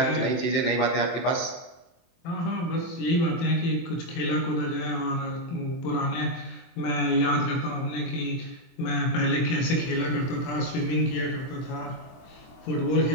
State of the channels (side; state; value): right; late; 24 ms